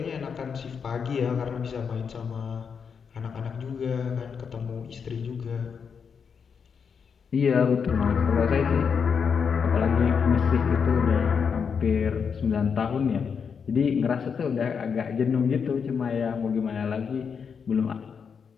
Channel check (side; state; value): right; quieter; 6.4 dB